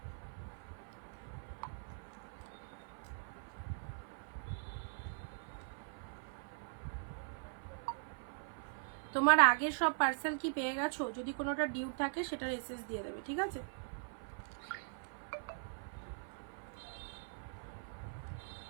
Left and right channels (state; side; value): silent; left; 50 dB below the other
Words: তোমার আগের সব পার্সেল কি পেয়ে গেছো? যদি কোনোটা ডিউ থাকে সেটার এসএস দিয়ে দেবে, ঠিক আছে?